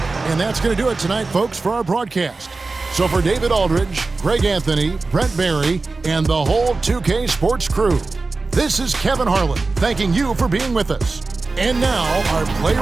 And that's going to do it tonight, folks, for our broadcast. So for David Aldridge, Greg Anthony, Brent Barry, and the whole 2K Sports crew, this is Kevin Harlan thanking you for being with us. And now, our player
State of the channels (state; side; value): quieter; left; 3.7 dB